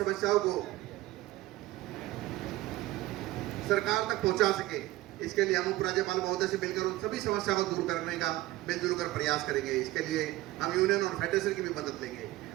को सरकार तक पहुंचा सके। इसके लिए हम उपराज्यपाल महोदय से मिलकर उन सभी समस्या को दूर करने का मिलजुल कर प्रयास करेंगे। इसके लिए हम यूनियन और फेडरेशन की भी मदद लेंगे।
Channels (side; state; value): left; quieter; 17.1 dB